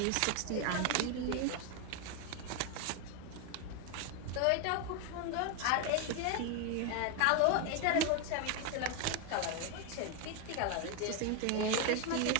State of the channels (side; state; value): both; different; correlation 0.01